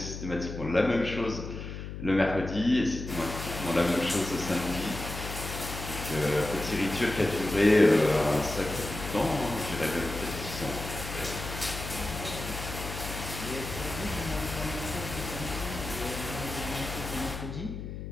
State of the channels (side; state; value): left; noise; hum, 8 dB below the sound